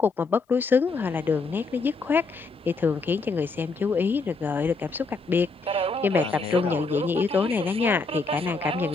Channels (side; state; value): right; quieter; 4.0 dB